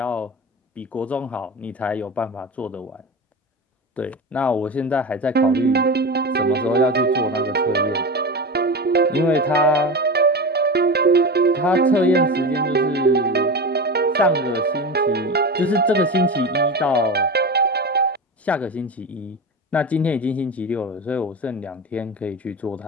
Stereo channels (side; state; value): both; normal; correlation 0.25